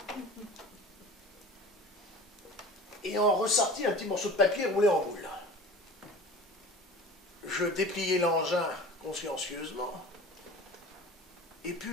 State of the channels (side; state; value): both; normal; correlation 0.39